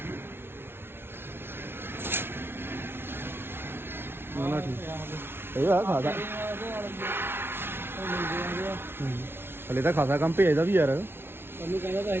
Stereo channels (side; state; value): left; late; 0.11 ms